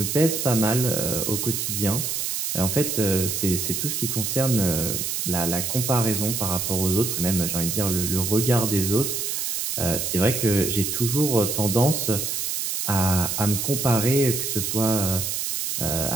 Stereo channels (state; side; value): noise; right; hiss, 1 dB below the sound